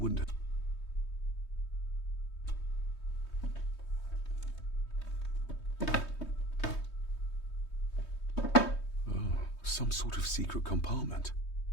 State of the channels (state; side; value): late; right; 3.2 ms